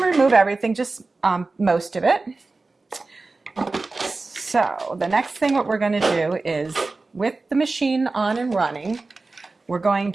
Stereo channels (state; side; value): quieter; left; 3.6 dB